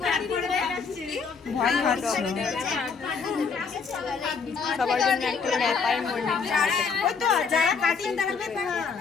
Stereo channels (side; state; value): right; quieter; 5.4 dB